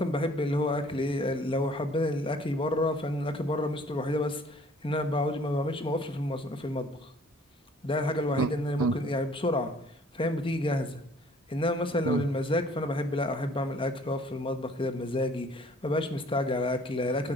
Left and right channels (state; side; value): normal; both; correlation 0.56